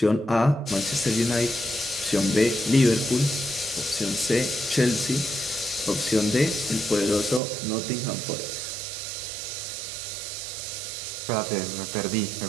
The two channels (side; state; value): left; drops out; at 7.4 s